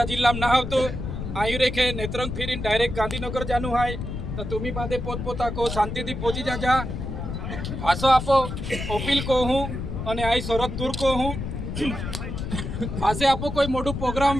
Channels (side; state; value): left; noise; rumble, 5 dB below the sound